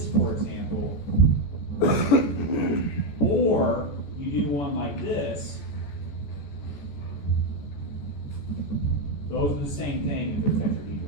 for example, or you do one like this, those are the same thing if they're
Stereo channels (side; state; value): right; late; 14 ms